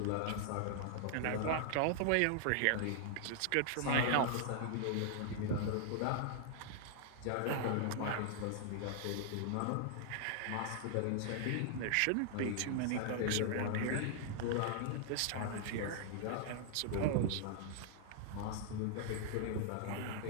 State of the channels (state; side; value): different; both; correlation -0.01